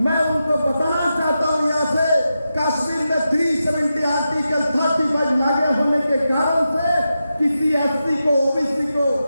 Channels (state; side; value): inverted; both; correlation -0.89